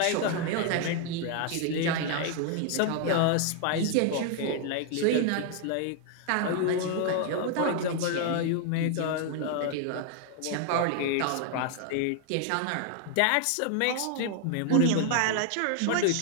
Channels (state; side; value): different; both; correlation 0.00